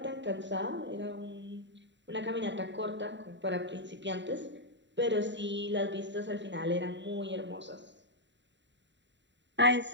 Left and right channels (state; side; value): late; left; 0.52 ms